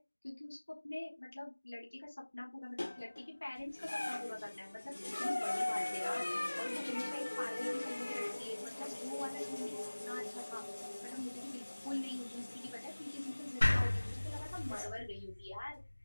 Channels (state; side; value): inverted; both; correlation -1.00